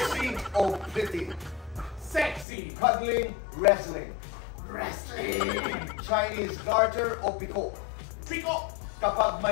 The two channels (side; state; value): right; drops out; at 2.5 s